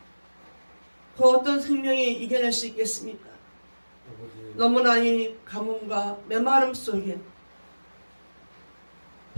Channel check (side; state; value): both; inverted; correlation -1.00